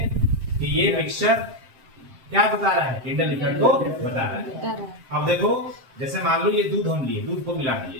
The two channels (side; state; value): left; late; 7.6 ms